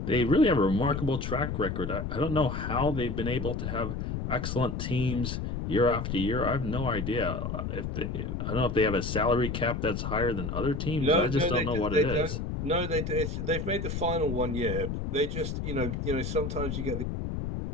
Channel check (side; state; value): left; noise; rumble, 3 dB below the sound